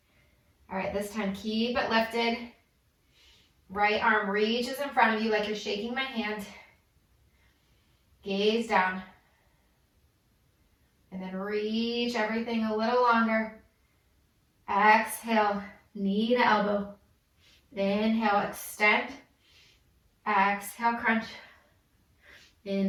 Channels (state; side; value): identical; both; correlation 1.00